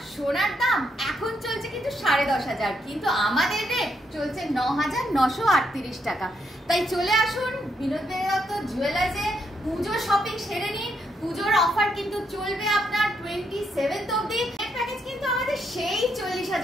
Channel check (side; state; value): both; normal; correlation 0.77